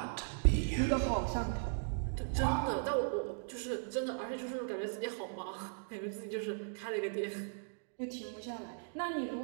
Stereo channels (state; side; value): silent; left; digital silence